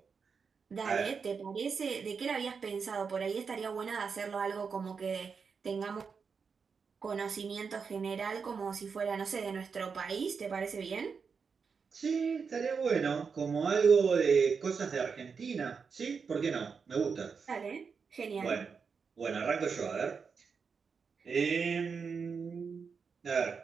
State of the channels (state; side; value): quieter; left; 5.7 dB